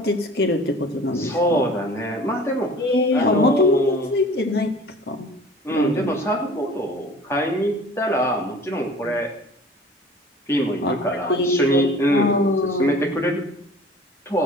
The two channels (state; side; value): normal; both; correlation 0.45